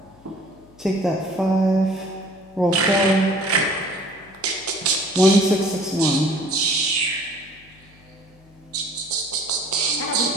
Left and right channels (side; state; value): left; noise; hum, 27 dB below the sound